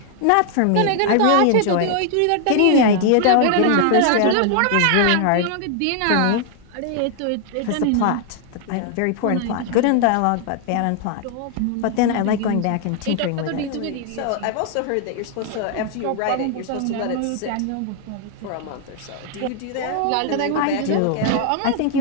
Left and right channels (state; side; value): different; both; correlation 0.00